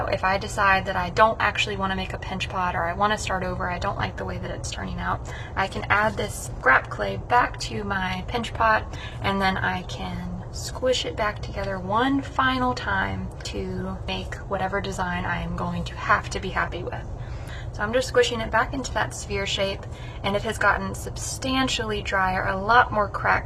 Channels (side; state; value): both; identical; correlation 1.00